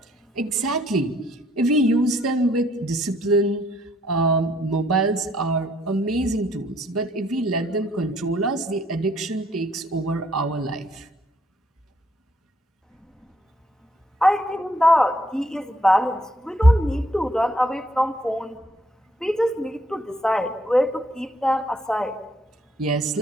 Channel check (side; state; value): both; normal; correlation 0.67